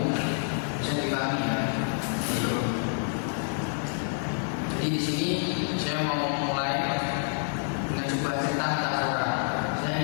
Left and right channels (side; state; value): right; silent; 59 dB below the other